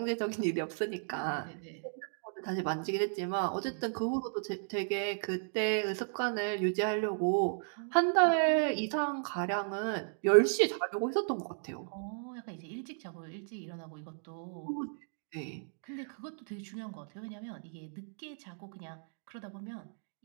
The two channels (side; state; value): left; silent; digital silence